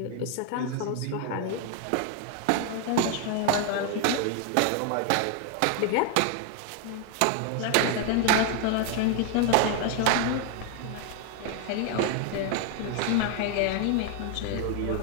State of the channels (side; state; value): both; different; correlation 0.01